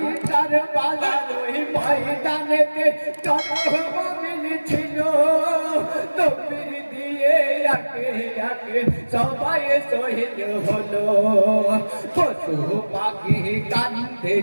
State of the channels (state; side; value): inverted; both; correlation -1.00